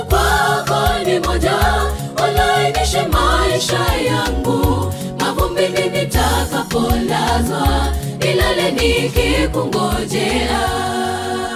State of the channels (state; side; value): identical; both; correlation 1.00